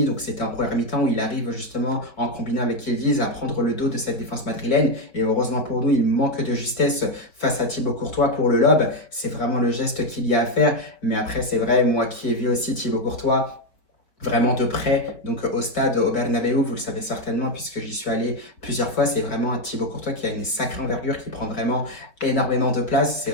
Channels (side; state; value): right; late; 4.3 ms